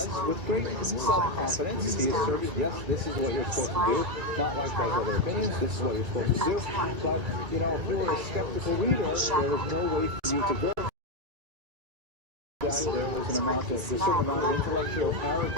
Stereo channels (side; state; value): left; late; 1.9 ms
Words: with great self-confidence. He asserted, yes, this is what you're supposed to do, not like those other opinions, this is what you're supposed to do. But, you know, if you were a skeptical reader, there was no way for you to verify that there was a certain amount of intellectual